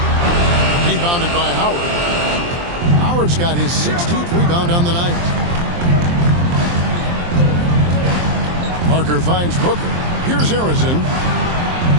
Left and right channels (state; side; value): late; left; 23 ms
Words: Rebounded by Howard. Howard's got his 16th rebound on the night. Parker finds Booker. Here's Harrison.